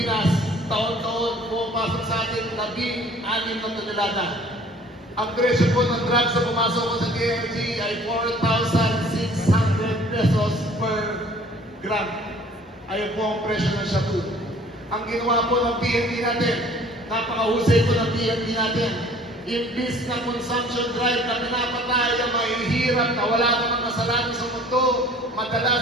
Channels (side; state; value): both; normal; correlation 0.52